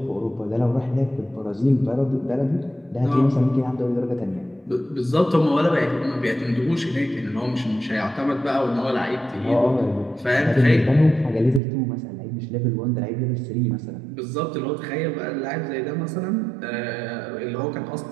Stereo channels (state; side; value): drops out; left; at 11.6 s